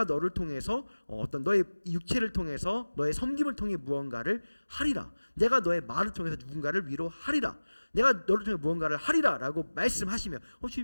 너를 통해서 어떤 너의 육체를 통해서 너의 섬김을 통해 무언가를 하리라. 내가 너의 말을 통해서 누군가를 위로하리라. 내가 너를 통해 무언가를 하리라 라고 말씀하시면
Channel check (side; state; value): both; inverted; correlation -1.00